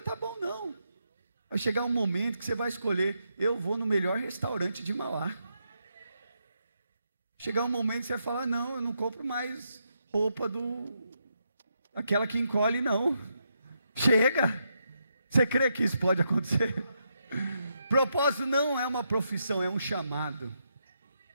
tá bom, não. Vai chegar um momento que você vai escolher: eu vou no melhor restaurante de Mauá. Chegar um momento que você vai falar: não, eu não compro mais roupa aquela que encolhe, não. Chega. Você crê que isso pode acontecer? Propósito não é uma profissão, é um chamado.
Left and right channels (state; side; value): inverted; both; correlation -0.81